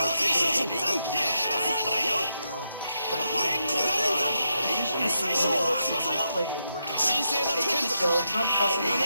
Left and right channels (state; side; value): inverted; both; correlation -0.83